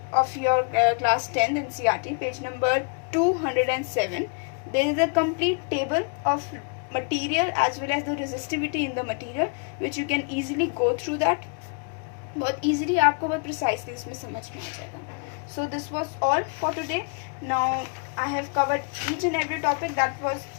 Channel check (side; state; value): right; quieter; 38.7 dB